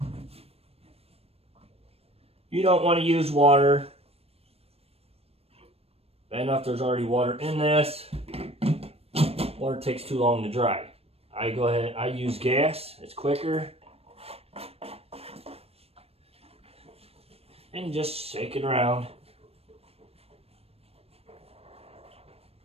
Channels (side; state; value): left; late; 0.29 ms